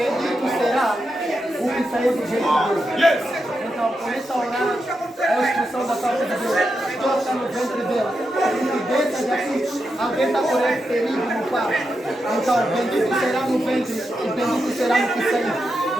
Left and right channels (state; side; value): normal; both; correlation 0.86